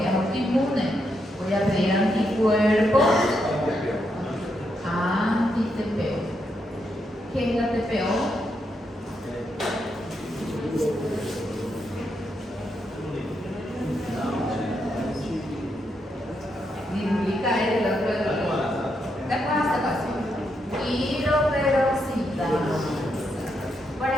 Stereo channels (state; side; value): normal; both; correlation 0.81